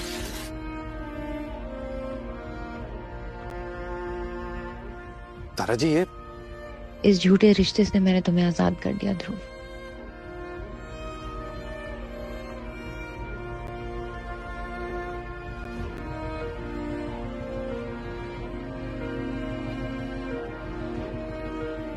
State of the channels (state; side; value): identical; both; correlation 1.00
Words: तारा जी, ये इस झूठे रिश्ते से मैंने तुम्हें आजाद कर दिया ध्रुव।